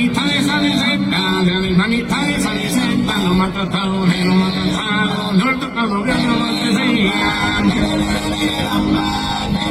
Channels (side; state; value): both; identical; correlation 1.00